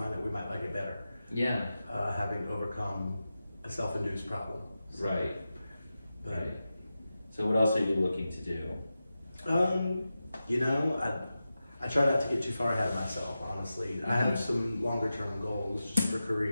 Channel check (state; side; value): inverted; both; correlation -0.92